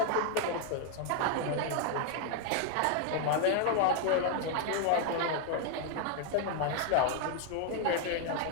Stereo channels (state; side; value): different; both; correlation 0.00